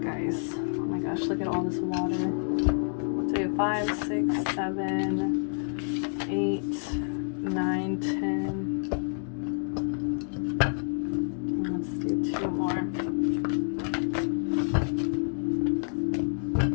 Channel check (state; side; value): silent; right; digital silence